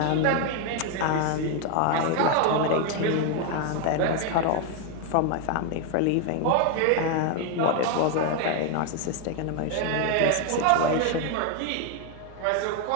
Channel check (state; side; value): different; both; correlation 0.01